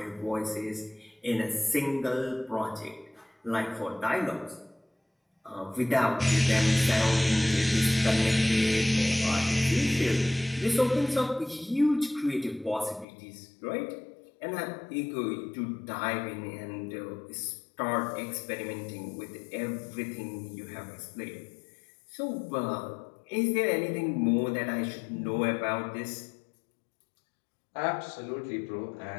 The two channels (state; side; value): drops out; right; at 13.1 s